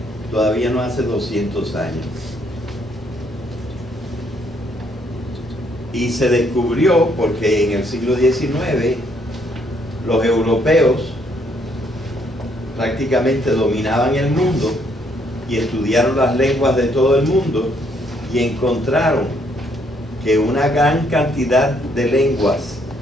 todavía no hace 200 años. Y se descubrió porque en el siglo XIX los europeos prácticamente dominaban el mundo y estudiaron las lenguas de todo el mundo y encontraron que una gran cantidad de lenguas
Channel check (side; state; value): both; normal; correlation 0.70